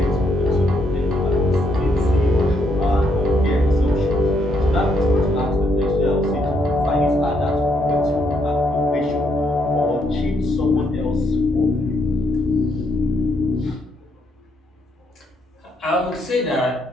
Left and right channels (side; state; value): both; normal; correlation 0.75